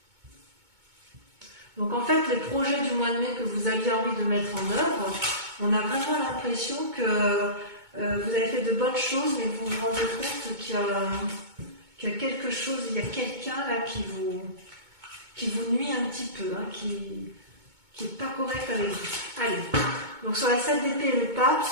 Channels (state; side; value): late; left; 2.2 ms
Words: Donc en fait, les projets du mois de mai que vous aviez envie de mettre en œuvre, on a vraiment l'impression que vous avez fait de bonnes choses, mais vous vous rendez compte qu'il y a quelque chose, il y a quelqu'un là qui vous nuit un petit peu, hein, qui n'est pas correct avec vous. Allez, donc sur la 7 d'épée et le pape,